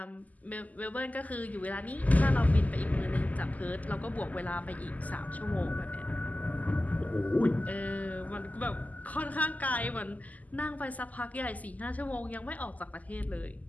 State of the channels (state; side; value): late; right; 0.077 ms